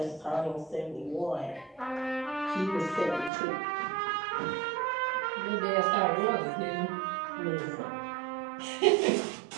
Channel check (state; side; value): drops out; left; at 3.3 s